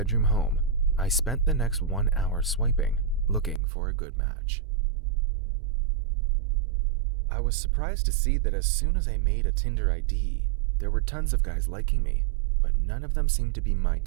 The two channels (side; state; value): left; drops out; at 3.6 s